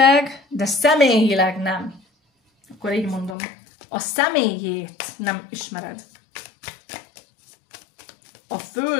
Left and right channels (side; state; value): right; drops out; at 3.4 s